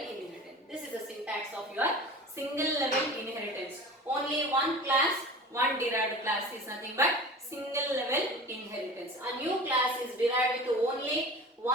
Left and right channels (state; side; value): normal; both; correlation 0.36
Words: inheritance. This is the syntax of your single level inheritance. Only one class, one derived class is nothing but single level inheritance. A new class is derived with only